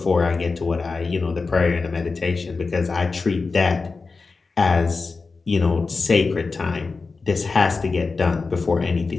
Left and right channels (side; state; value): right; quieter; 4.2 dB